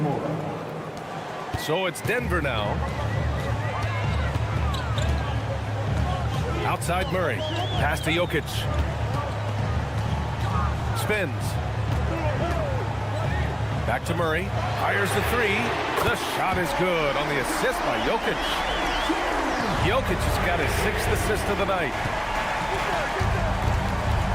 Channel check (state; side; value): identical; both; correlation 1.00